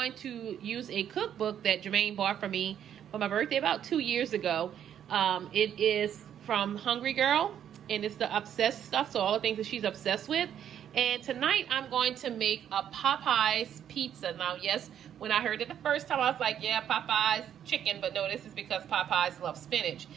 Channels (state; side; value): quieter; left; 9.6 dB